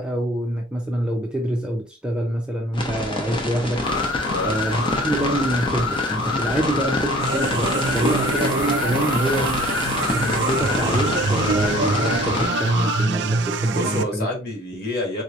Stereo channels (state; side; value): normal; both; correlation 0.51